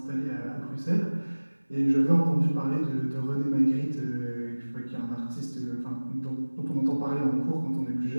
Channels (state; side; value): inverted; both; correlation -1.00